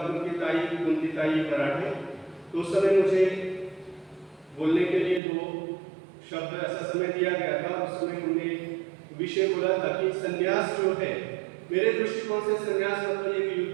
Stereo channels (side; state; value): left; drops out; at 5.2 s